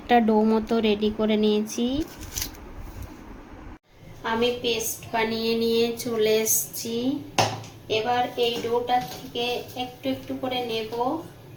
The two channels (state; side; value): identical; both; correlation 1.00